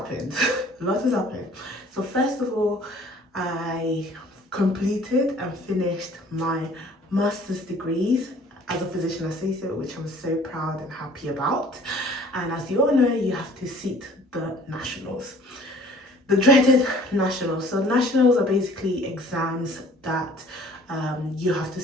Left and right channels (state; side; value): normal; both; correlation 0.53